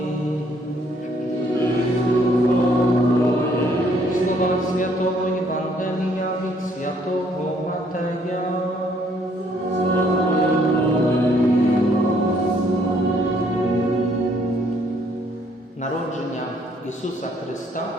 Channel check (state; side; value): normal; both; correlation 0.66